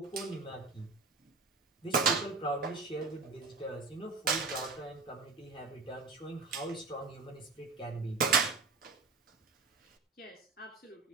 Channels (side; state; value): left; quieter; 4.2 dB